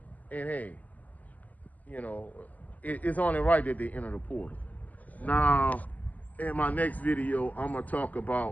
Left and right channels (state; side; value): late; right; 0.078 ms